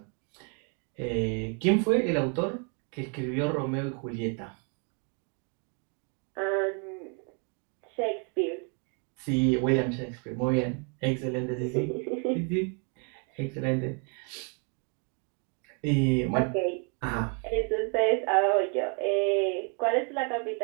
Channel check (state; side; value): quieter; left; 38.6 dB